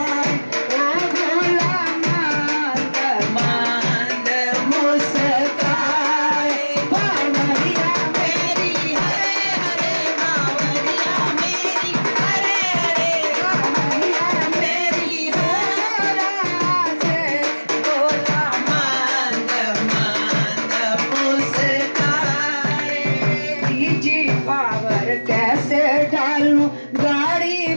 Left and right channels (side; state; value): both; inverted; correlation -1.00